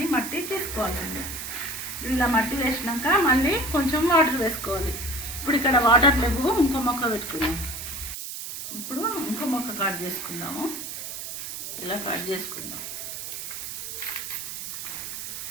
మట్టి తీసుకోవాలండి. ఇలా మట్టి వేసినాక మళ్ళీ కొంచెం వాటర్ వేసుకోవాలి. ఇప్పుడు ఇక్కడ వాటర్ లేవు, ఇంకో మొక్క పెట్టుకుందాం. ఇప్పుడు ఇంకో మొక్క కట్ చేసుకుందాము. ఇలా కట్ చేసుకుందాం.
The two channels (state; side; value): noise; right; hiss, 7 dB below the sound